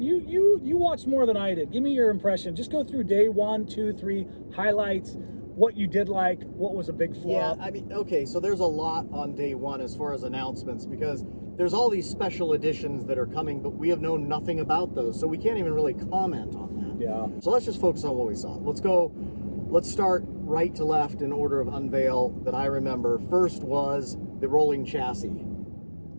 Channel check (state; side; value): inverted; both; correlation -1.00